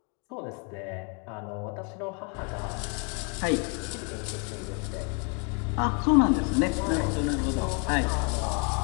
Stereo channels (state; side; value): quieter; right; 34.9 dB